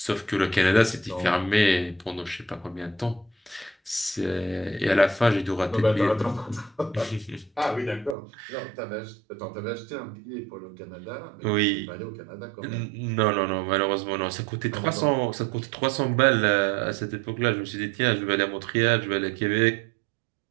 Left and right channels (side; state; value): left; drops out; at 8.2 s